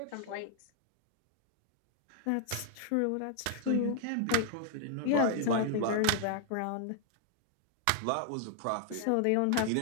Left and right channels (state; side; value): different; both; correlation 0.00